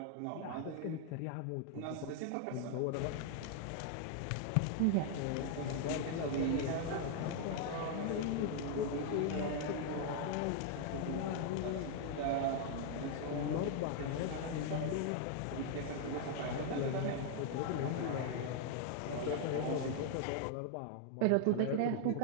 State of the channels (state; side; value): different; both; correlation 0.00